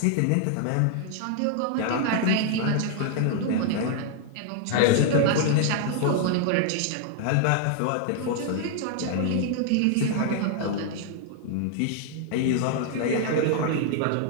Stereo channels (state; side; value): different; both; correlation 0.00